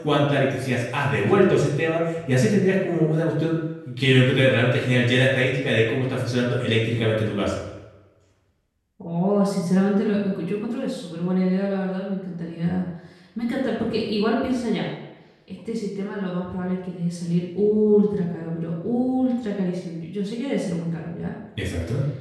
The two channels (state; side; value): identical; both; correlation 1.00